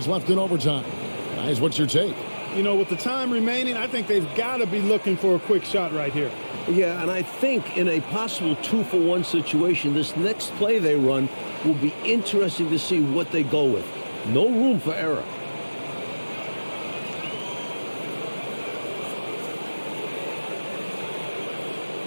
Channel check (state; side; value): inverted; both; correlation -1.00